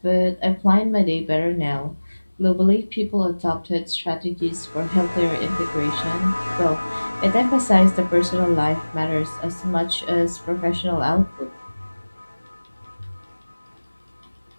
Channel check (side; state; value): both; inverted; correlation -1.00